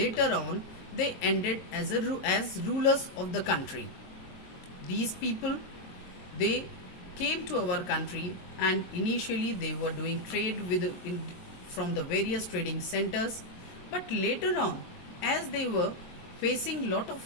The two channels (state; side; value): late; right; 22 ms